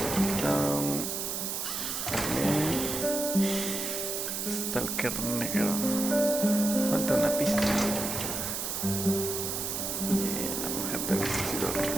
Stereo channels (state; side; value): noise; right; hiss, 3 dB below the sound